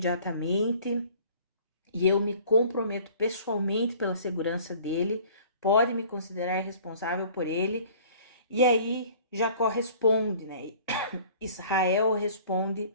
e eu me comprometo pessoalmente pela segurança dele, pode me considerar responsável por ele. E aí Jacó responde, né? Israel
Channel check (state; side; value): inverted; both; correlation -0.50